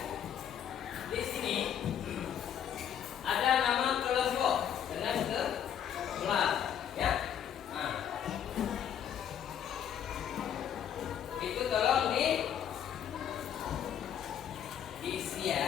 di sini ada nama kelompok dengan kelas, ya. Nah, itu tolong diisi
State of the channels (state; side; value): quieter; right; 9.3 dB